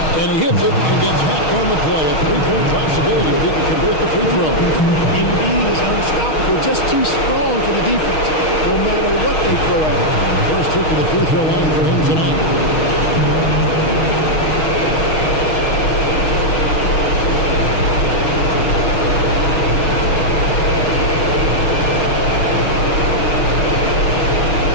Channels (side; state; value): right; late; 6.4 ms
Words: And he hits it and gets hacked on the play. A 3-point possibility if he can convert the free throw. Embiid is unstoppable. Just too strong for the defense, no matter what they throw at him. First trip to the free throw line for him tonight.